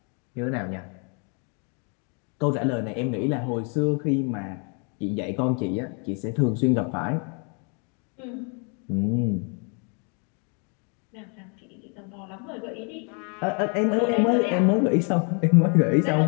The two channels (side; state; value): right; quieter; 37.6 dB